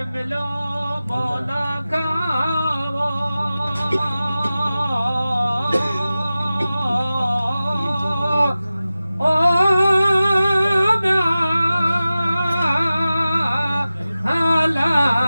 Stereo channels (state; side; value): inverted; both; correlation -0.95